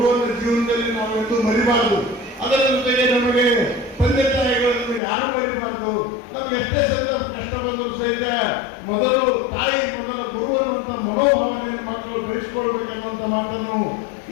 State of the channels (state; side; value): drops out; right; at 5.0 s